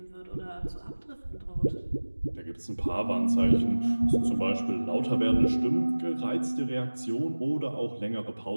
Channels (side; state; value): both; inverted; correlation -1.00